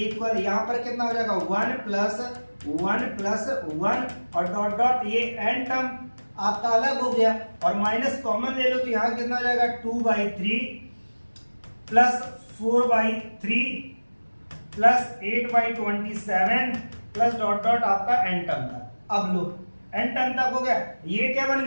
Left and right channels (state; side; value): inverted; both; correlation -1.00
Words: यहां पर कितना हो जाएगा 1 प्लस 1 और डॉट डॉट ये एन टर्म आपका अलग हो गया, और माइनस कॉमन ले लो तो यहां कितना हो जाएगा 2/3 plus 4/3 plus 8/27 plus dot dot आपका एन टर्म तक। अब लो एन टर्म तक हो गया, ये क्या बन